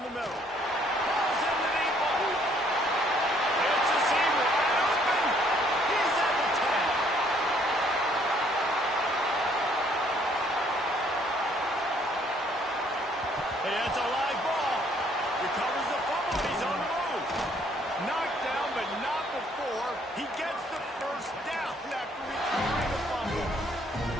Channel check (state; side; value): normal; both; correlation 0.64